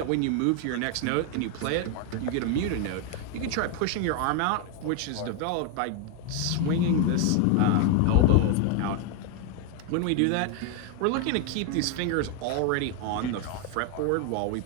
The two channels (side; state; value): both; different; correlation 0.01